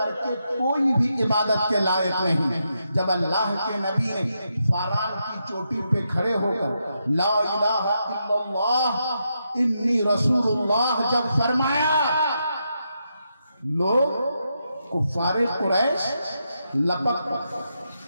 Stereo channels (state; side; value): inverted; both; correlation -0.83